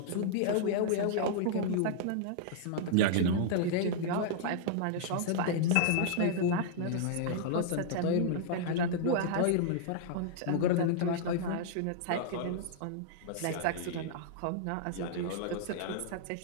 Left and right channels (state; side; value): different; both; correlation -0.01